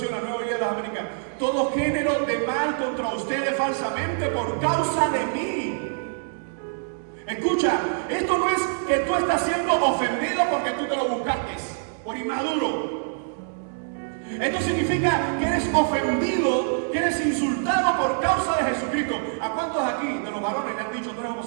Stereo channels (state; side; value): silent; left; digital silence